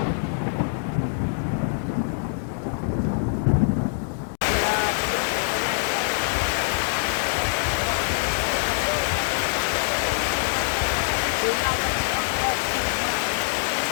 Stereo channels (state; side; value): silent; right; digital silence